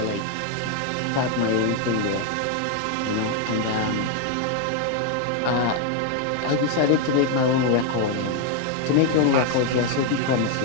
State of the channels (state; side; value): different; both; correlation 0.01